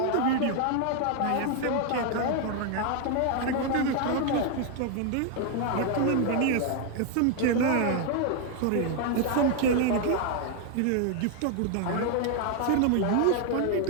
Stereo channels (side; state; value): both; different; correlation 0.00